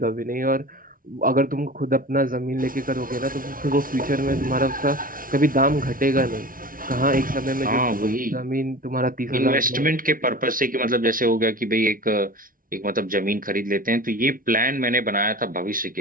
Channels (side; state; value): left; late; 0.41 ms